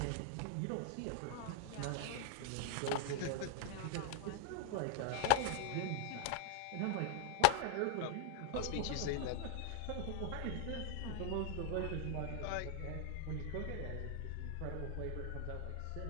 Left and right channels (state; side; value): different; both; correlation 0.00